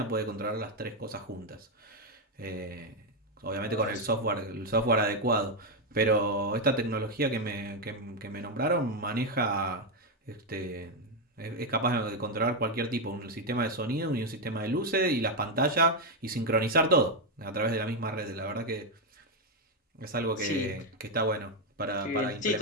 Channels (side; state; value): both; normal; correlation 0.04